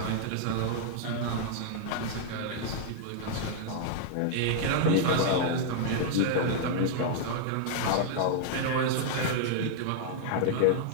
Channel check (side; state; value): both; different; correlation -0.01